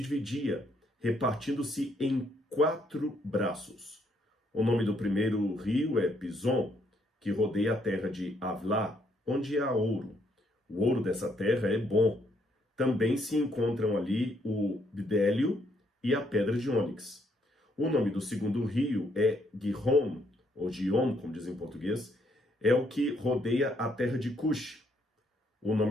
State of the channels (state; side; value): normal; both; correlation 0.71